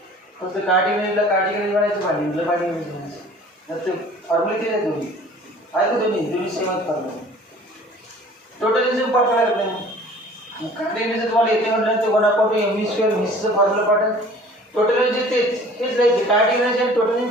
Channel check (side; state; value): both; normal; correlation 0.49